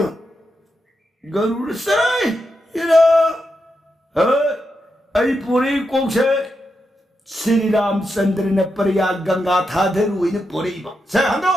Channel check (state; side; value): normal; both; correlation 0.86